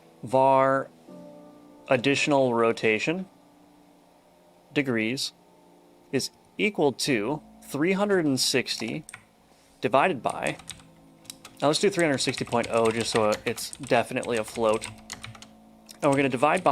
Var additional rotation degrees is equal to 360 divided by, now let's do 360.0 just so it's definitely a float. And we're going to divide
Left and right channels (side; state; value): both; identical; correlation 1.00